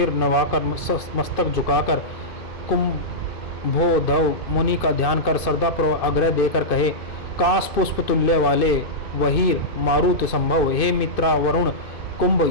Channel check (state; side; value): late; right; 2.6 ms